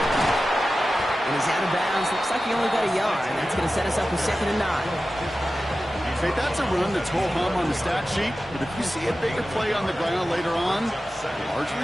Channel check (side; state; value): both; normal; correlation 0.94